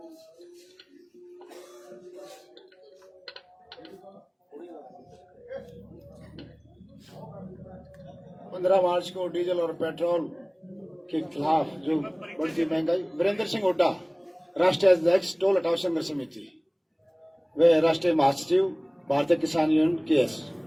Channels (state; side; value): identical; both; correlation 1.00